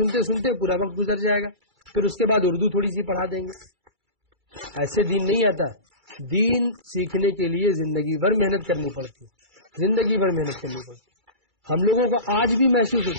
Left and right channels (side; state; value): left; late; 2.3 ms